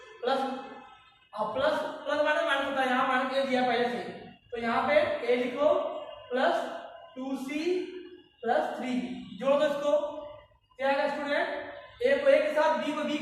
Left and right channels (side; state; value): both; identical; correlation 1.00